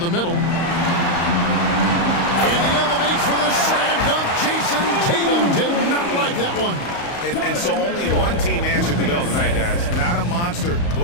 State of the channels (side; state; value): right; late; 35 ms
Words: middle. And he elevates for the slam dunk. Jason Tatum did not like that one. And so only one team answered the bell tonight, guys. Not a monster